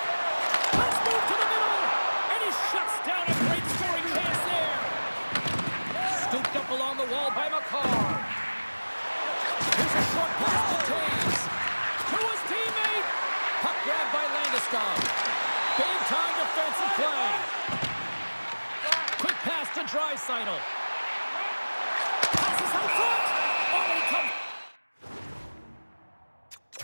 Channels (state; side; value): inverted; both; correlation -1.00